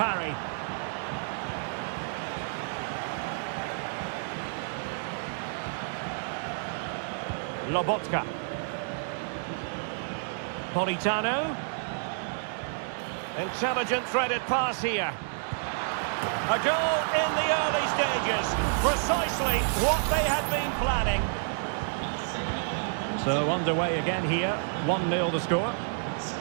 Lobotka. Politano. Intelligent threaded pass here. A goal in the early stages. Precisely what they had been planning. So underway again here. 1-0 the score.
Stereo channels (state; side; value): silent; left; digital silence